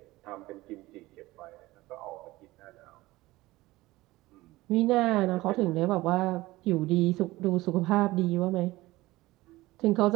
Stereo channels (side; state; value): left; quieter; 18.8 dB